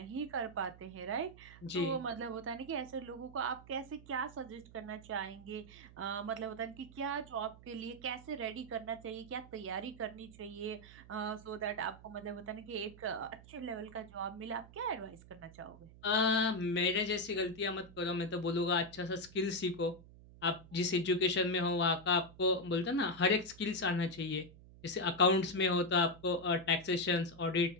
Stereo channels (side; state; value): right; noise; hum, 20 dB below the sound